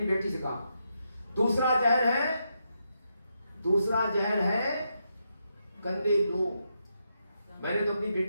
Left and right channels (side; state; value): both; inverted; correlation -0.82